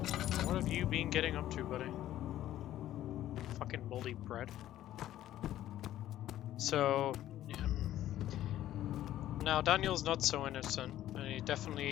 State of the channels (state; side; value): quieter; right; 13.0 dB